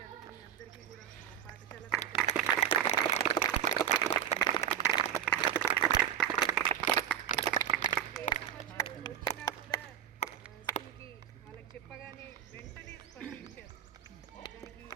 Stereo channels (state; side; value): quieter; left; 9.6 dB